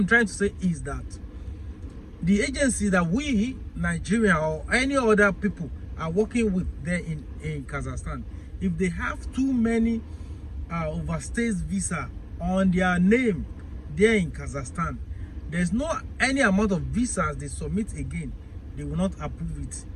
trying to say is that the agency that we, Nigeria or any other people, are working with there in Kazakhstan, if they have too many overstays visa on their name there in Kazakhstan, there's no any amount of visas they submit again, they will not approve it.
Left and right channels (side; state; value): both; identical; correlation 1.00